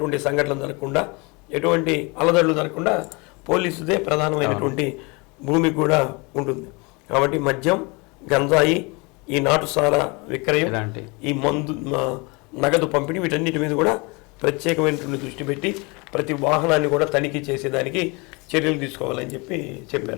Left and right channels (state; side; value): quieter; right; 28.1 dB